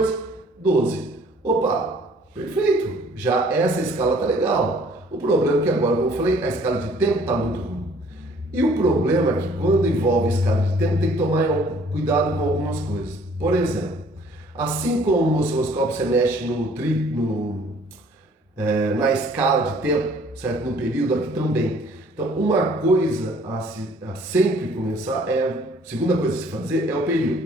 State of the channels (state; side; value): normal; both; correlation 0.57